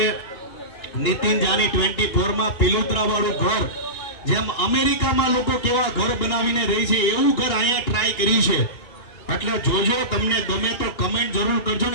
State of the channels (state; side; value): late; right; 3.0 ms